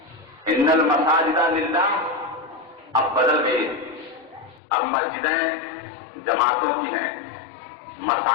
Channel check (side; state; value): right; drops out; at 4.6 s